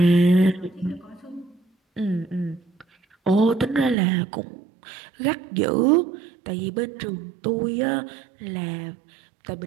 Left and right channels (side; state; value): left; drops out; at 4.0 s